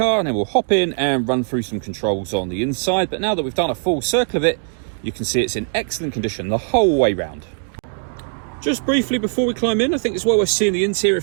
and then we'll hop in and run through some controls on the inside. But now that we've done a full circle of it, you can see it's in excellent condition the whole way round. Just briefly before we climb in, I think it's well worth seeing the interior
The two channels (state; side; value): silent; left; digital silence